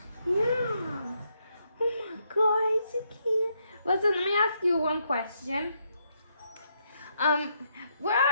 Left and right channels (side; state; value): both; inverted; correlation -0.76